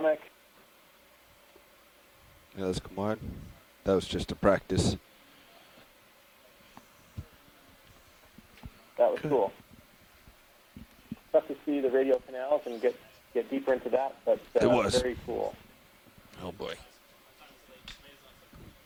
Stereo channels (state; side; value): identical; both; correlation 1.00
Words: Yeah, let's come on. That was just a practice. That was cool. Tough to see the radial canals and get deeper into that, but it was very cool. Oh boy.